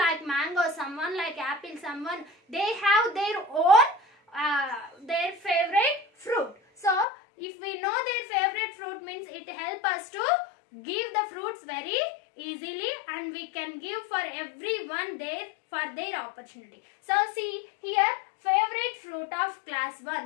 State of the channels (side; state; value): right; drops out; at 7.1 s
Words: like mango, someone like apple, someone they have their own their favorite fruit. So if we know their favorite fruit, means it helps us to give the fruits very easily, and we can give for everyone for their opportunity. So see here, favorite fruit of class